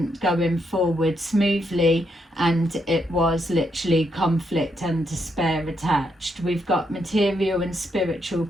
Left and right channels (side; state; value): both; normal; correlation 0.78